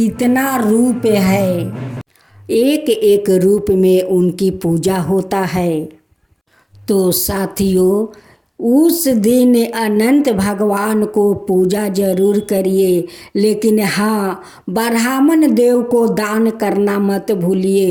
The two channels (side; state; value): both; identical; correlation 1.00